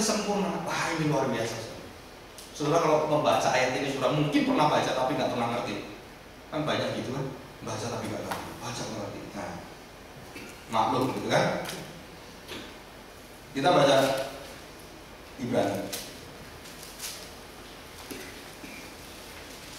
sempurna? Wah, ini luar biasa. Saudara kalau membaca ayat ini, saudara mungkin pernah baca tapi nggak pernah ngerti. Kan banyak gitu kan, baca tapi nggak ngerti, baca nggak ngerti. Nah, maklum gitu kan. Kita baca Ibrani.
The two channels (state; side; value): identical; both; correlation 1.00